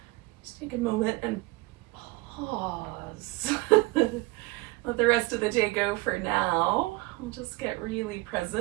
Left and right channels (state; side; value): quieter; left; 22.8 dB